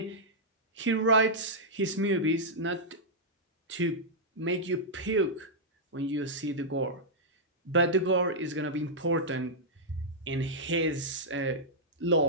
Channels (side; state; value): both; normal; correlation -0.09